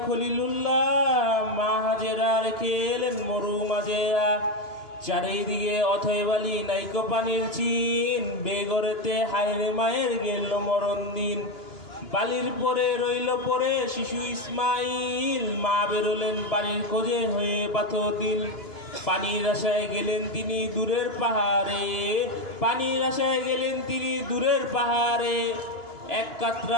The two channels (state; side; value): late; right; 2.9 ms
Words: খলিলুল্লাহ, মা হাজেরা রেখে এলেন মরু মাজেরা। চারিদিকে অথয় বালি নাইকো পানির চিন, বেগরেতে হায়রে মায়ের গেল মরণ দিন। বালির পরে রইল পরে শিশু ইসমাইল, মা বেরোলেন পানির খোঁজে হয়ে পাথর দিল। পানির আশায় গেলেন তিনি দূরের পাহাড়ে, পানির আশায় গেলেন তিনি দূরের পাহাড়ে। এক